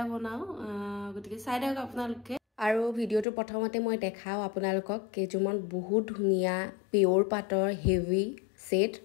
বনাও গতিকে চাই দিয়ক আপোনালোকে আৰু ভিডিওটো প্ৰথমতে মই দেখাও আপোনালোকক কেজুমন বহুত ধুনিয়া পিওৰ পাটৰ হেভি সেট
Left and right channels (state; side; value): drops out; right; at 3.2 s